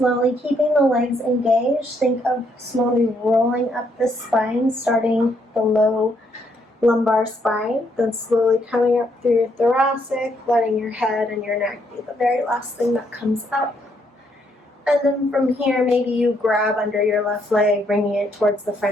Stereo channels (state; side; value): normal; both; correlation 0.73